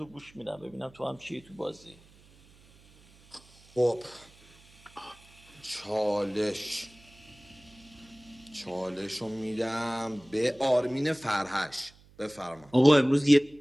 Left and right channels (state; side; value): noise; right; hum, 26 dB below the sound